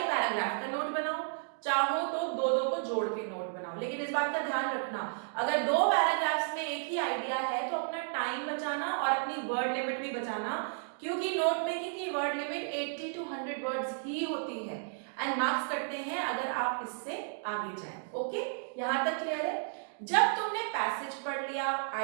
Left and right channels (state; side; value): silent; left; digital silence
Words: पैराग्राफ का नोट बनाओ, चाहो तो दो दो को जोड़ के नोट बनाओ, लेकिन इस बात का ध्यान रखना अगर दो पैराग्राफ्स में एक ही आइडिया है तो अपना टाइम बचाना और अपनी वर्ड लिमिट भी बचाना, क्योंकि नोट मेकिंग की वर्ड लिमिट 80 to 100 वर्ड्स ही होती है एंड मार्क्स कटते हैं अगर आप इससे आगे जाएं। ओके, यहां तक क्लियर है? जब तुमने पैसेज पढ़ लिया,